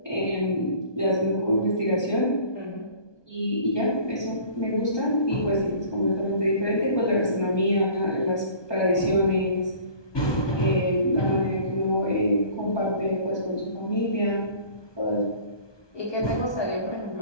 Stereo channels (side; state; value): right; late; 1.2 ms